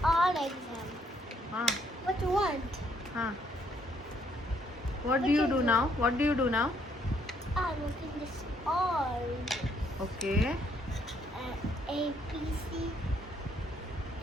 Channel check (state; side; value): normal; both; correlation 0.69